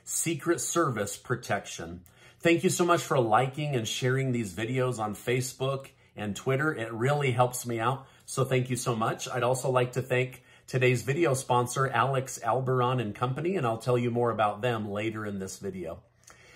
Secret Service protection. Thank you so much for liking and sharing these videos on Facebook and Twitter. It really helps me out. So thank you so much. I'd also like to thank today's video sponsor, Alex Alberon and Company, and I'll tell you more about them later in this video.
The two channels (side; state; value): both; identical; correlation 1.00